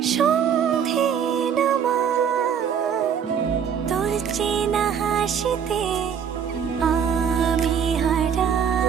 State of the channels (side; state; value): left; quieter; 7.7 dB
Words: সন্ধে নামায়, তোর চেনা হাসিতে আমি হারা,